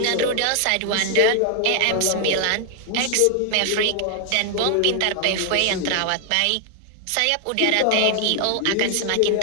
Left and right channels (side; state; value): both; different; correlation 0.00